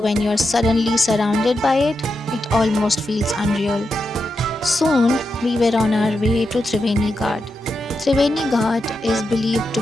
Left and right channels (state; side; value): normal; both; correlation 0.87